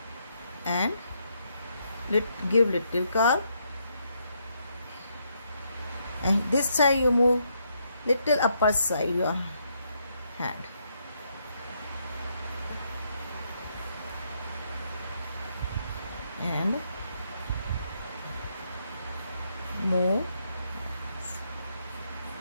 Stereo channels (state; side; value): inverted; both; correlation -0.76